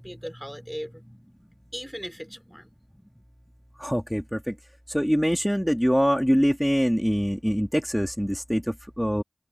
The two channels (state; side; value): identical; both; correlation 1.00